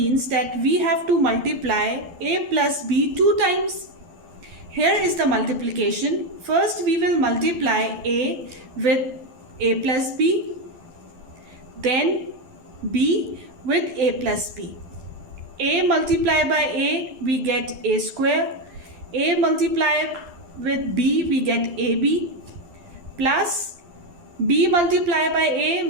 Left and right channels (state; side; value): late; left; 12 ms